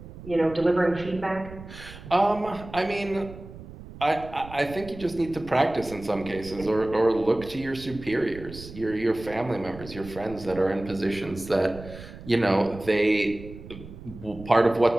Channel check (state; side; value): noise; right; rumble, 15 dB below the sound